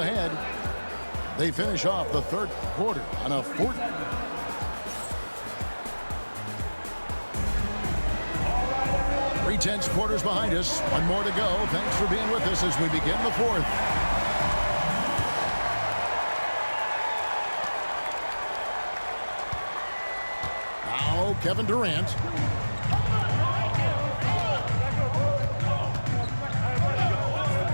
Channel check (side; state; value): both; inverted; correlation -1.00